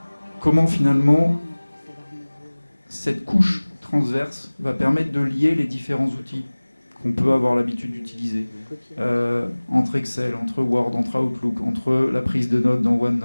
comment finalement cette couche transverse va permettre de lier les différents outils qu'on peut avoir l'habitude d'utiliser. Entre Excel, entre Word, entre Outlook, entre la prise de notes dans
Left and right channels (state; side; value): inverted; both; correlation -1.00